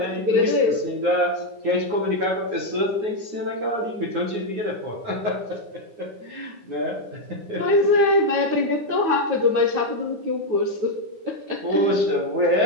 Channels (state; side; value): late; left; 9.6 ms